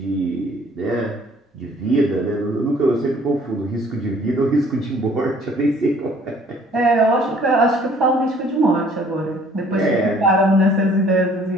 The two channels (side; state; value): both; normal; correlation 0.57